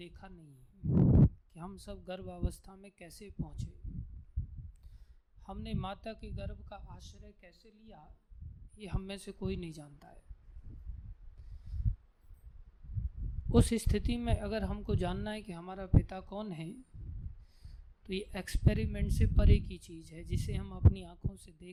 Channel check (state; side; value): identical; both; correlation 1.00